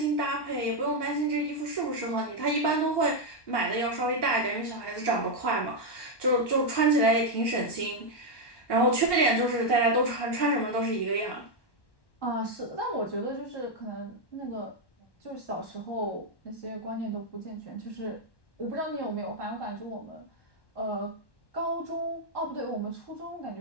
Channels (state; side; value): late; right; 1.1 ms